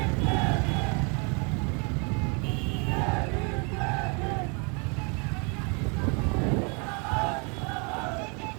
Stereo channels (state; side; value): quieter; left; 34.2 dB